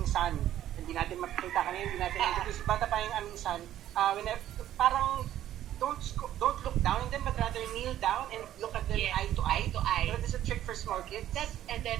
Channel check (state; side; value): quieter; left; 12.3 dB